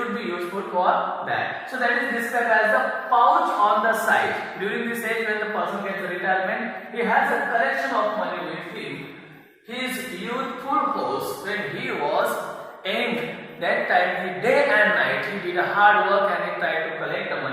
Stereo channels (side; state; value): both; identical; correlation 1.00